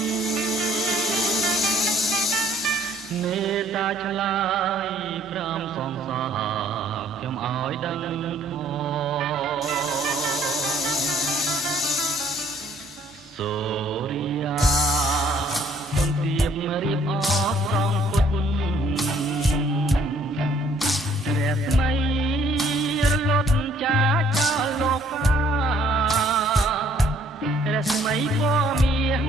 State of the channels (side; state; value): both; normal; correlation 0.61